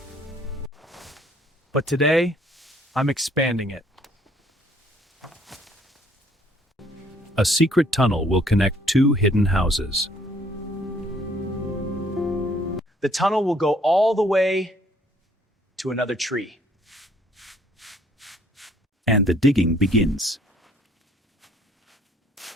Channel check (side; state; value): both; normal; correlation 0.62